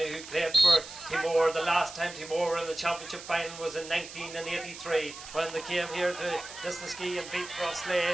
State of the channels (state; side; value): noise; right; hiss, 13 dB below the sound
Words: who played for Teemore. The last time Teemore were in the championship final was in 1983 when they came here to Lisnaskey and beat